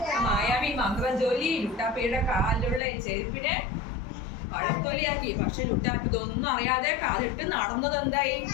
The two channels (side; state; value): right; drops out; at 2.8 s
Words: മായാവി മന്ത്രം ചൊല്ലി ലുട്ടാപ്പിയുടെ കാലിലുള്ള ചെരുപ്പിനെ പഴത്തൊലിയാക്കി. പക്ഷെ ലുട്ടാപ്പി ഇതൊന്നും അറിയാതെ കാലിട്ട് നടന്നത് എന്തായി?